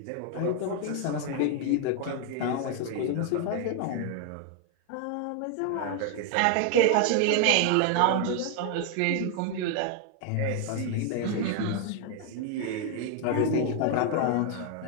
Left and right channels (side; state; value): both; different; correlation 0.00